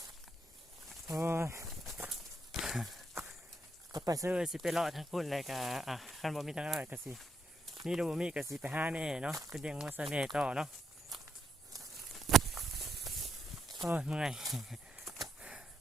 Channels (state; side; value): normal; both; correlation 0.78